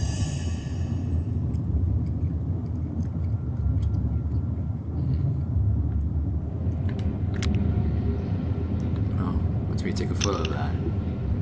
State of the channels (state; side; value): identical; both; correlation 1.00